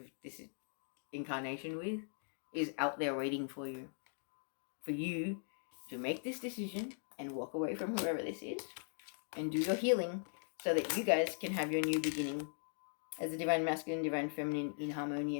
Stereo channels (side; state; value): right; silent; digital silence